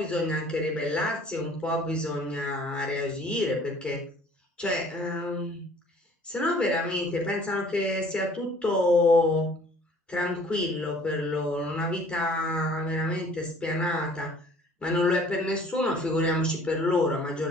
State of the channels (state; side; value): normal; both; correlation 0.53